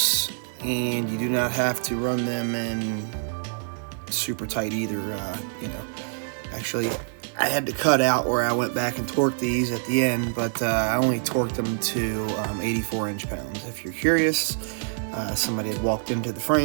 and you do not have to run them in super tight either. Actually, I had to cut out where I went back and torqued these at the end, but I only torqued them to 84 inch-pounds. If you're curious, somebody had walked into the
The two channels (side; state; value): left; silent; digital silence